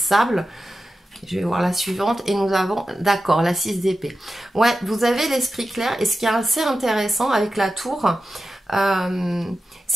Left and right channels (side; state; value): both; normal; correlation 0.92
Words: Je vais voir la suivante et nous avons, d'accord, la 6 d'épée. Ouais, vous avez l'esprit clair et ce qui est assez intéressant avec la tour,